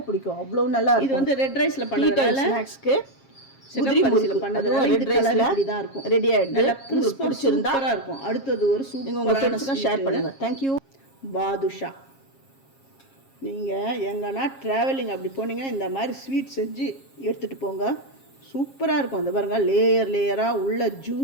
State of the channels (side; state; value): right; late; 7.4 ms